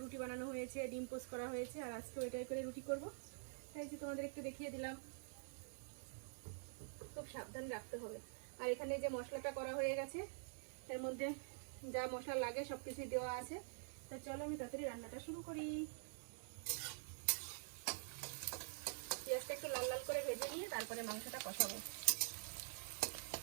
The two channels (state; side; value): silent; left; digital silence